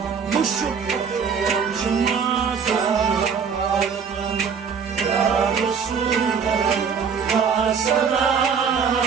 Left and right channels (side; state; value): left; quieter; 6.4 dB